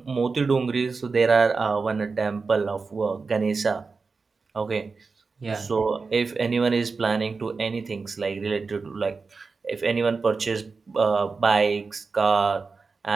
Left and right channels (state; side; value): quieter; left; 4.4 dB